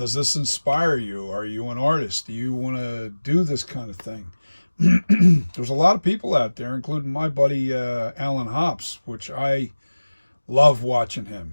inspire you? Are you an artist? Do you want to do this kind of thing? There's a lot of people out there, including my buddy Alan Hops, which I love watching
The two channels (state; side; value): inverted; both; correlation -1.00